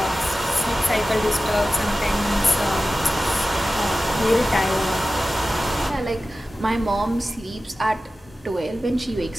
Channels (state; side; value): normal; both; correlation 0.95